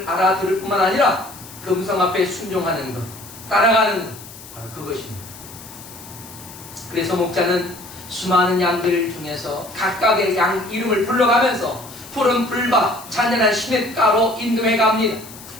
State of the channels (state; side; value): noise; left; hiss, 17 dB below the sound